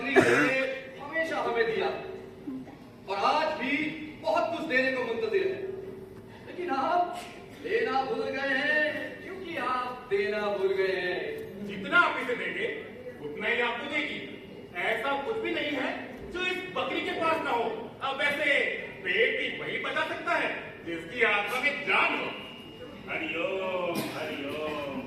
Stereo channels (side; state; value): both; identical; correlation 1.00